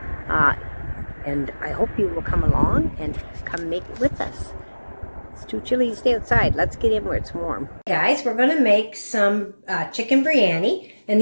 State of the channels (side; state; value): both; inverted; correlation -1.00